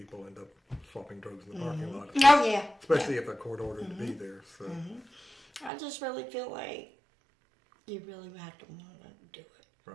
end up swapping drugs in the parking lot. Oh, yeah. Especially if they're court-ordered to be there. So. I just really feel like you really have to want to do it.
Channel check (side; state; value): left; drops out; at 5.7 s